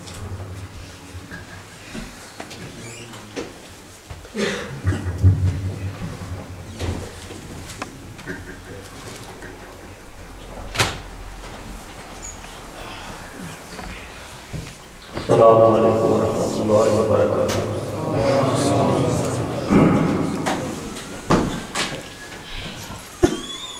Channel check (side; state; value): both; identical; correlation 1.00